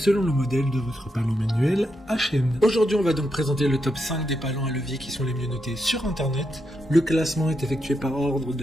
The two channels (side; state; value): both; normal; correlation 0.83